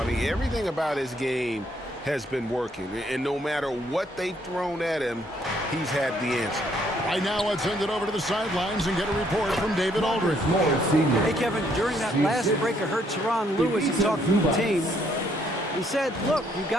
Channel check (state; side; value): normal; both; correlation 0.69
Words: mean, everything about his game has been working. And no matter what they've thrown at him, he's had the answer. Right now, let's send it over to the sidelines and get a report from David Aldridge. Hey, Kevin, during that last break, I heard Teron Lewis talk to the team. He said, look, you